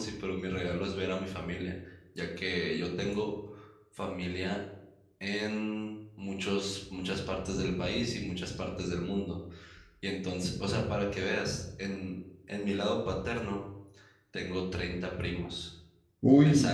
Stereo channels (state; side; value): identical; both; correlation 1.00